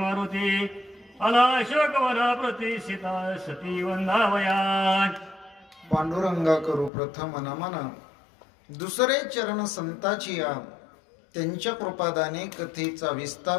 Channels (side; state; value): right; drops out; at 6.9 s